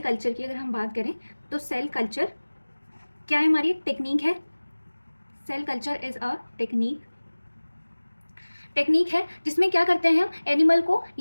culture की अगर हम बात करें तो सेल कल्चर क्या है, हमारी टेक्निक है। Cell culture is a technique है जिसमें क्या करते हैं हम एनिमल को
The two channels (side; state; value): both; inverted; correlation -1.00